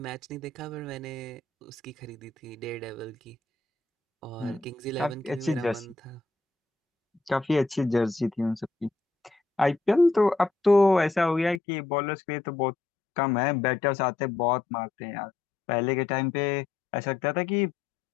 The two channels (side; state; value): right; drops out; at 11.6 s